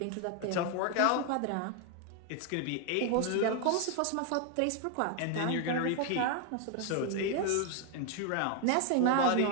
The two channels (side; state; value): both; different; correlation 0.01